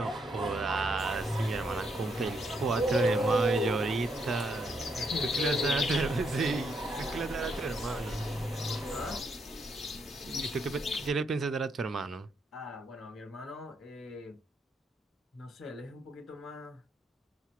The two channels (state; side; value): normal; both; correlation 0.76